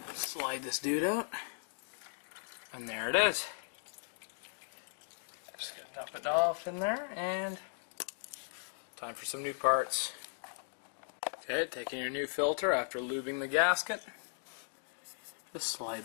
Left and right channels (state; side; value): silent; right; digital silence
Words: Slide this dude out, and there it is. Just gonna dump it off in there, and time for some new parts. Okay, taking your new filter after lubing the gasket. Just